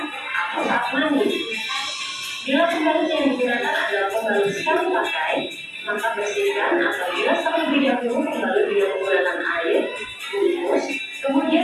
atau saat mandi. Bila pembalut yang digunakan adalah pembalut sekali pakai, maka bersihkan atau bilas terlebih dahulu pembalut dengan menggunakan air, bungkus,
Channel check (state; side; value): identical; both; correlation 1.00